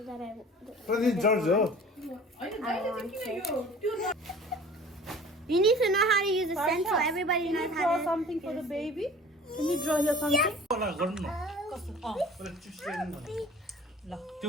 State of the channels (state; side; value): normal; both; correlation 0.45